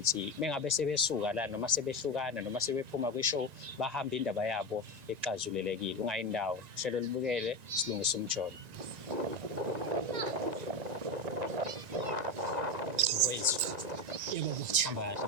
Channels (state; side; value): late; left; 1.9 ms